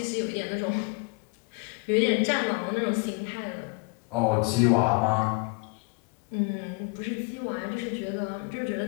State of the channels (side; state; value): right; quieter; 30.3 dB